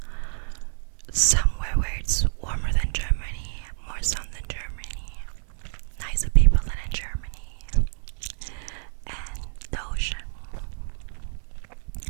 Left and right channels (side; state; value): left; silent; 60 dB below the other